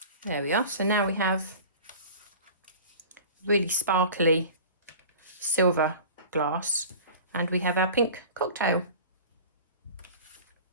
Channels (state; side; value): inverted; both; correlation -0.39